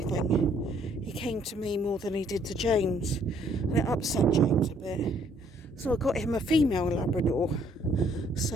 he came to me more than he did to James, and it upset James a bit. So I got him a female Labrador,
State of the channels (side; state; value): both; normal; correlation 0.64